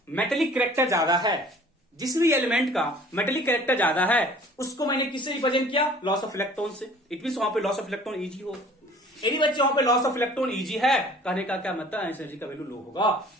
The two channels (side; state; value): both; normal; correlation 0.50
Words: मेटेलिक कैरेक्टर ज्यादा है, जिस भी एलिमेंट का मेटेलिक कैरेक्टर ज्यादा है, उसको मैंने किससे रिप्रेजेंट किया? लॉस ऑफ इलेक्ट्रॉन से। इट मींस वहां पे लॉस ऑफ इलेक्ट्रॉन इजी हो। यदि बच्चे वहां पे लॉस ऑफ इलेक्ट्रॉन इजी है, कहने का क्या मतलब? आयनाइजेशन एनर्जी का वैल्यू लो होगा।